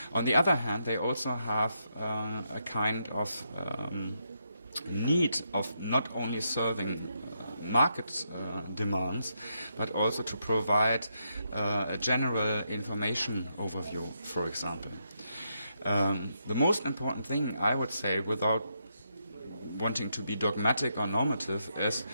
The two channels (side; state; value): both; inverted; correlation -0.81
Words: On the other hand, they also have a kind of need of not only serving market demands, but also to provide a general information overview, for example. The most important thing, I would say, without wanting to be dogmatic or normative, is